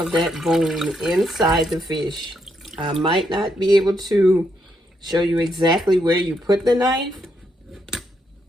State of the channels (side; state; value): both; normal; correlation 0.78